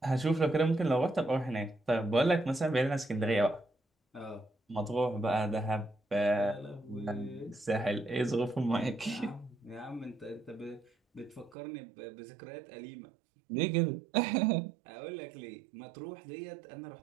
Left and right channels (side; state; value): left; drops out; at 11.6 s